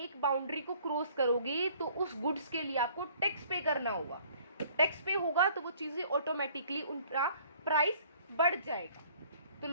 बाउंड्री को क्रॉस करोगे तो उस गुड्स के लिए आपको टैक्स पे करना होगा। तो टैक्स पे होगा तो वो चीजें ऑटोमेटिकली उनका प्राइस बढ़ जाएगा, तो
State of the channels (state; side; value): inverted; both; correlation -0.56